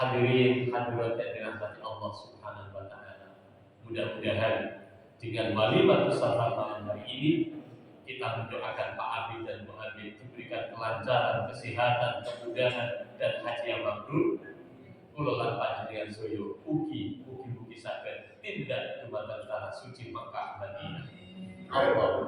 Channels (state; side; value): identical; both; correlation 1.00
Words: hadirat yang dirahmati Allah Subhanahu wa ta'ala, mudah-mudahan dengan walimatus safar malam hari ini kita mendoakan Pak Abid dan Bu Abid diberikan kelancaran, kesehatan, kemudahan dan haji yang mabrur. Kula lan panjenengan soyo ugi tindak dumateng tanah suci Makkah Madinah.